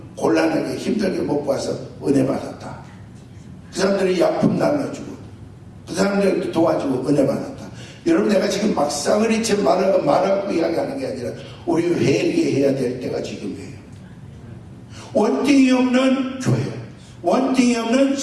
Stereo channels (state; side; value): identical; both; correlation 1.00